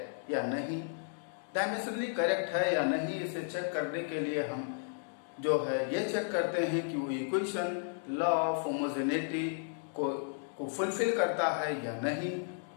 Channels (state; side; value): silent; right; digital silence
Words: या नहीं। डायमेंशनली करेक्ट है या नहीं, इसे चेक करने के लिए हम जो है ये चेक करते हैं कि वो इक्वेशन लॉ ऑफ होमोजेनिटी को फुलफिल करता है या नहीं।